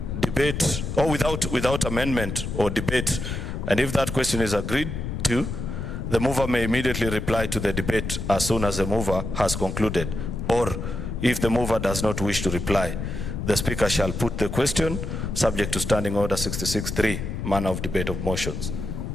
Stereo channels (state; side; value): noise; left; rumble, 5 dB below the sound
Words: debate, or without amendment or debate. And if that question is agreed to, the mover may immediately reply to the debate as soon as the mover has concluded. Or if the mover does not wish to reply, the Speaker shall put the question subject to Standing Order 66(3), manner of debate of motions.